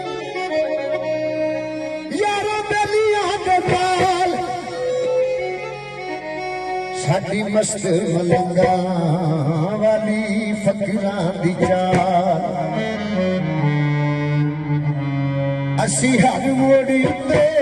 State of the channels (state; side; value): identical; both; correlation 1.00